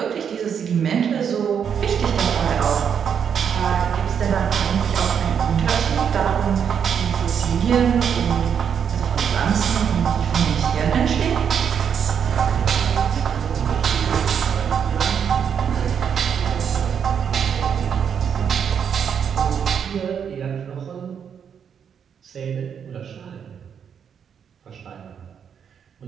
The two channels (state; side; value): quieter; left; 7.6 dB